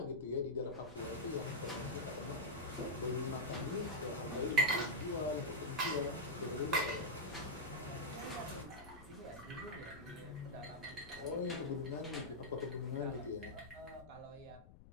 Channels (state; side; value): noise; left; rumble, 18 dB below the sound